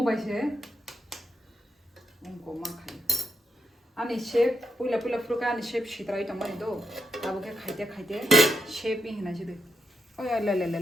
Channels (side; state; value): both; normal; correlation 0.82